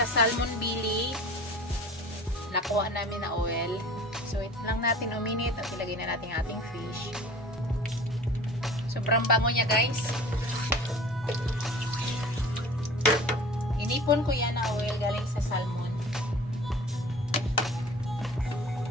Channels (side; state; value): both; normal; correlation 0.42